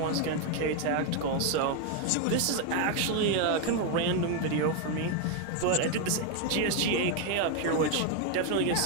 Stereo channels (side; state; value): both; different; correlation 0.01